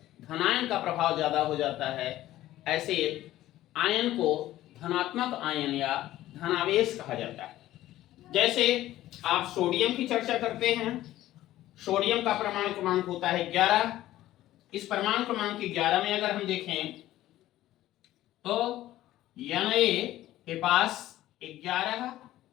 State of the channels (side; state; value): right; quieter; 14.6 dB